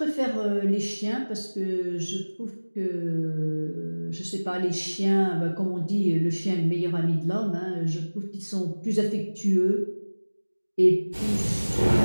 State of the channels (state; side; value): inverted; both; correlation -1.00